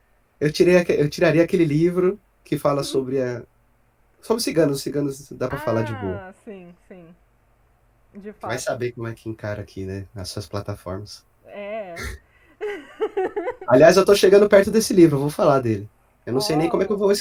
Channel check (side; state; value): both; identical; correlation 1.00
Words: Eu tiraria aquele livro que fala sobre a. Sobre ciganos. Ciganos dá pra falar de boa. Ah, sim, sim. De Vai fato. saber como é que encara aqui, né? Nas suas plataformas. É. Aliás, eu tô chegando perto desse livro, eu vou falar dele. Eu não sei nem como é que eu Oh. vou